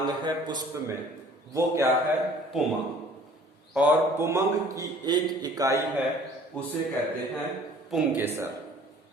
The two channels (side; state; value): both; normal; correlation 0.52